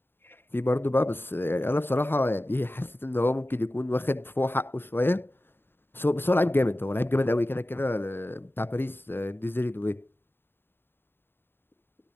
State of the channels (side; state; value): right; late; 0.10 ms